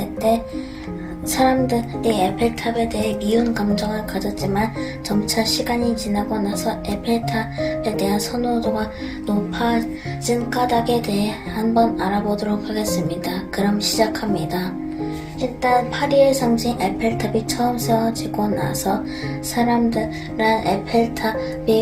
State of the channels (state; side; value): identical; both; correlation 1.00